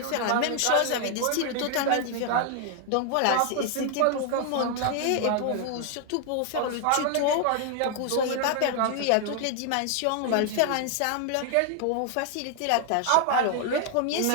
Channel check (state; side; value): different; both; correlation 0.00